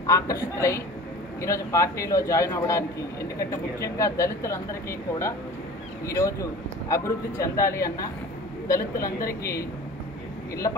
ఆకర్షితులై ఈరోజు పార్టీలో జాయిన్ అవ్వడానికి, ఎందుకంటే ముఖ్యంగా దళితులందరికీ కూడా ఈరోజు అభివృద్ధి చెందాలి అన్నా, దళితులందరికీ ఇళ్ల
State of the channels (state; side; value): normal; both; correlation 0.40